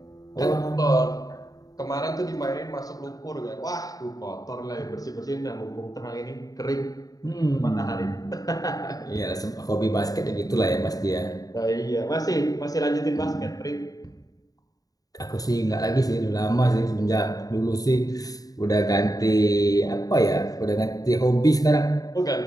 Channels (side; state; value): right; late; 0.18 ms